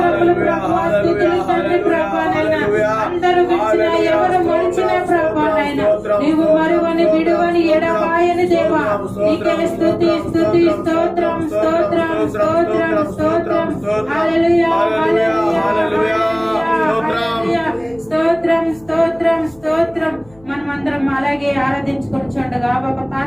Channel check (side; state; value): left; noise; hum, 27 dB below the sound